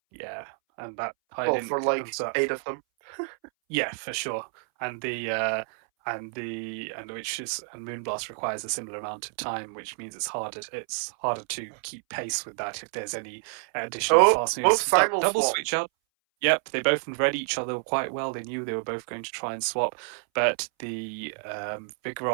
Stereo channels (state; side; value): silent; left; 59 dB below the other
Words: Yeah, and that I Well, for didn't. like 8 of them. Yeah, for sure. And and Moonblast requires a similar amount of time, which means it's harder to keep pace with that if there's any additional Oh, fast both moves. simul Double swap. switch out. Yep, they both read each other quite well. They knew they were both going to try and swap, but the